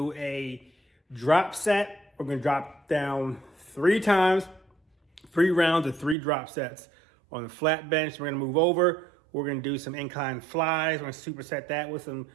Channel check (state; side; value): drops out; left; at 6.2 s